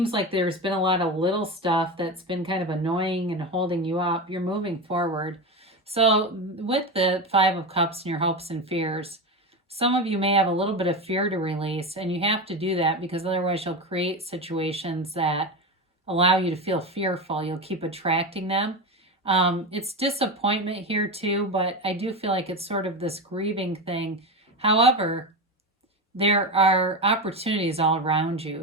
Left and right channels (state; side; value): normal; both; correlation 0.19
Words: like there's been a lot of little stuff that's been kind of annoying and holding you up, you're moving forward. So with the Five of Cups and your hopes and fears, some of you may have a little bit of fear to release, and you have to do that because otherwise you'll create situations that allow you to feel fearful. You'll keep attracting them. It's disappointment here too, but I do feel like it's sort of this grieving thing. However, there are opportunities all around you.